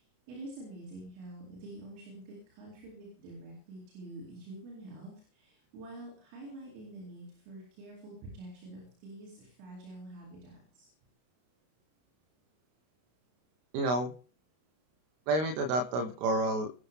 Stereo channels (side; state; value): left; late; 32 ms